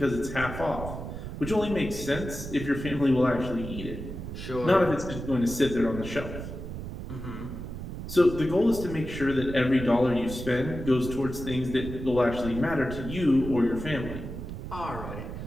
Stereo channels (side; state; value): right; noise; rumble, 8 dB below the sound